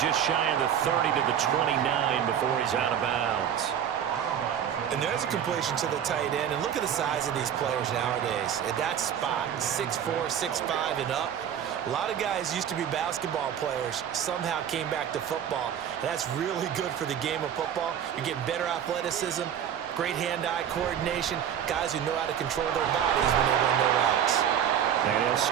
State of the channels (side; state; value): left; quieter; 9.2 dB